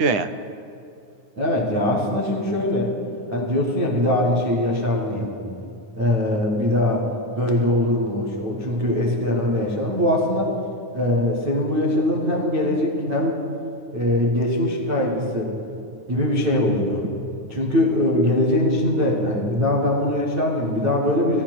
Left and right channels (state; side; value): late; left; 9.5 ms